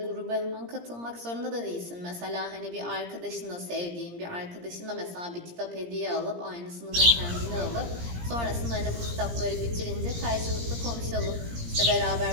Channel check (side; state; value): left; late; 17 ms